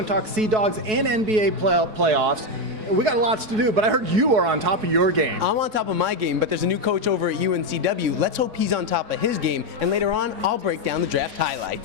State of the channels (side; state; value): left; late; 4.6 ms